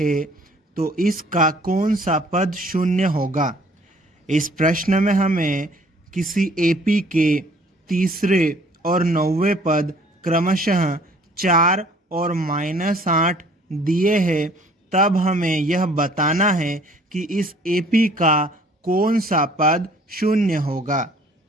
तो इसका कौन सा पद शून्य होगा। इस प्रश्न में हमें किसी एपी के तीसरे और नौवें पद क्रमशः 4 और -8 दिए हैं, तब हमें यह बताना है कि इस एपी का कौन सा पद शून्य होगा।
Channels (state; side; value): normal; both; correlation 0.56